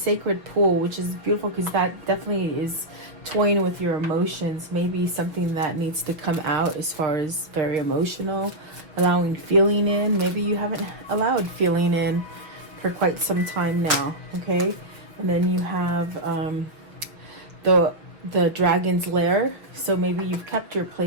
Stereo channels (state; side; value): late; left; 5.9 ms